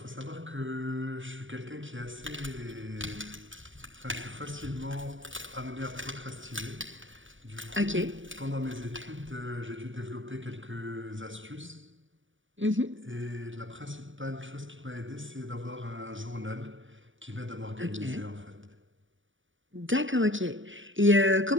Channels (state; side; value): late; left; 0.56 ms